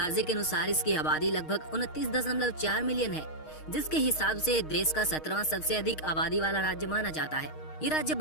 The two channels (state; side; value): late; right; 6.4 ms